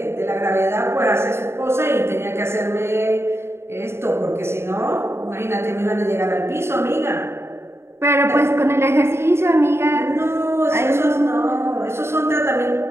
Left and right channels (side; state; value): left; late; 0.12 ms